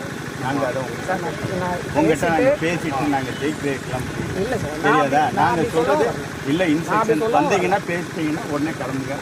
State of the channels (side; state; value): both; identical; correlation 1.00